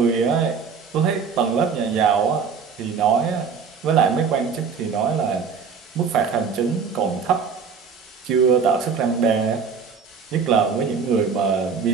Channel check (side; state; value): left; quieter; 5.9 dB